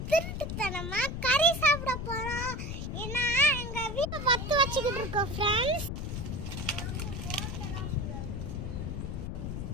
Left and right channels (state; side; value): noise; left; rumble, 4 dB below the sound